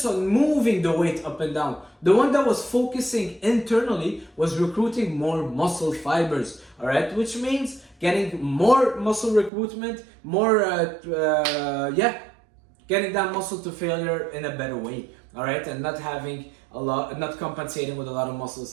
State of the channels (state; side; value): drops out; left; at 9.5 s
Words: on moving the weight up and down. The one that was focusing internally was recruiting more muscle fibers, all right, which means getting more muscle recruitment, getting that muscle to failure in a better way, all right, and not compensating with a lot of